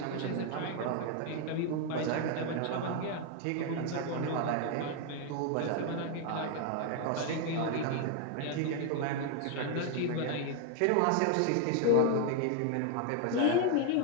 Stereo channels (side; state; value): both; different; correlation 0.00